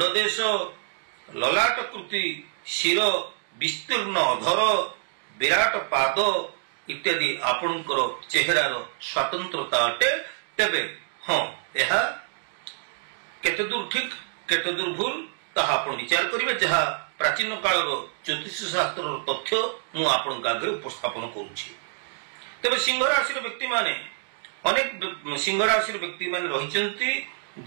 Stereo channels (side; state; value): left; silent; digital silence